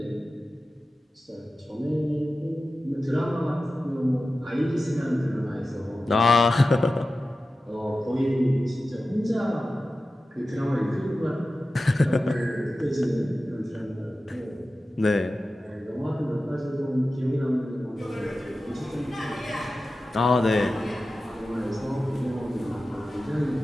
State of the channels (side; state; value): both; normal; correlation 0.94